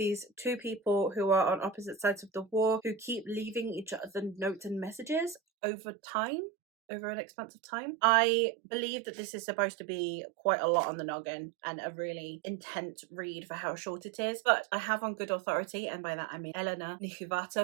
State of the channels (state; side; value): drops out; left; at 5.4 s